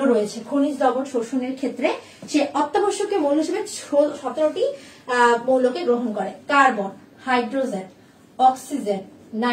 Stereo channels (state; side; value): identical; both; correlation 1.00